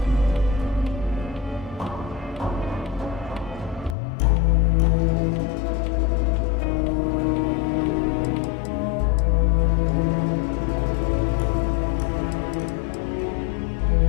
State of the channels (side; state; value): right; drops out; at 4.0 s